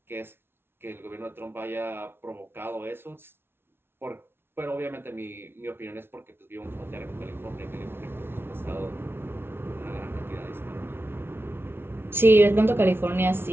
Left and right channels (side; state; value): left; late; 0.11 ms